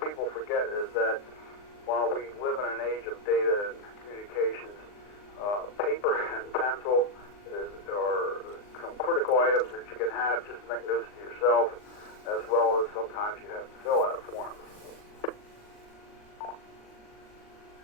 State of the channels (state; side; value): late; right; 39 ms